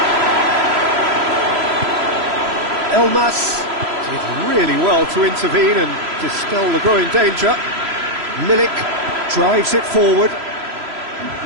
Elmas did really well to intervene and dispel the growing danger. Milik drives it forward.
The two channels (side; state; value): left; late; 3.0 ms